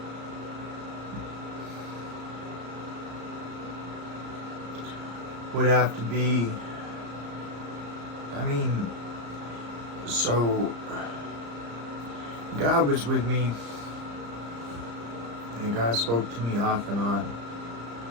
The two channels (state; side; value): late; left; 34 ms